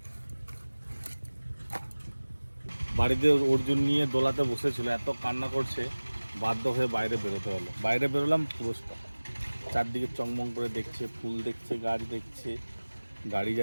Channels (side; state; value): both; inverted; correlation -1.00